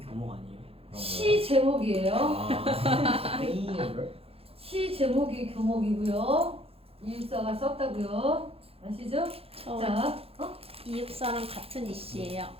교목 아니에요? 시 제목이에요. 아. 시 제목이 교목이고요. 이육사가 썼다고요. 아시죠? 저 자, 이육사랑 같은 이씨예요.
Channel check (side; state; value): left; late; 0.28 ms